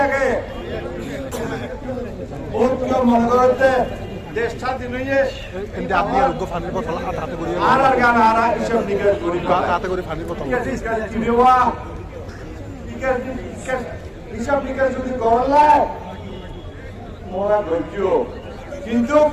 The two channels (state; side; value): identical; both; correlation 1.00